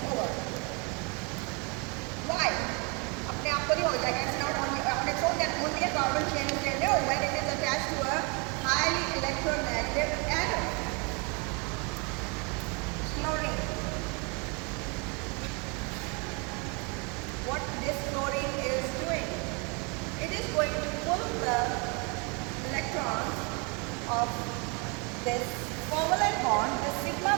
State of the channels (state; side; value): quieter; left; 32.2 dB